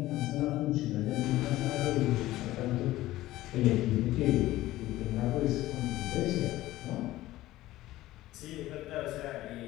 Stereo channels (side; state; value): right; quieter; 16.2 dB